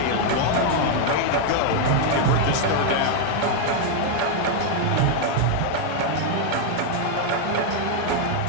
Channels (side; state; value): both; different; correlation 0.00